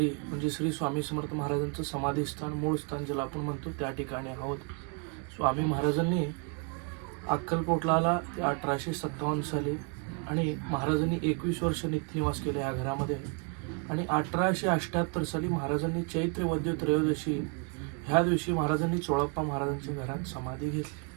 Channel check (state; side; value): quieter; left; 36.5 dB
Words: म्हणजे श्री स्वामी समर्थ महाराजांचं समाधीस्थान मूळ स्थान ज्याला आपण म्हणतो त्या ठिकाणी आहोत. स्वामी महाराजांनी अक्कलकोटला आला ते 1857 साली आणि महाराजांनी 21 वर्ष नित्यनिवास केले या घरामध्ये आणि 1878 साली महाराजांनी चैत्र वद्य त्रयोदशी ह्या दिवशी महाराजांनी चोळप्पा महाराजांच्या घरात समाधी घेतली.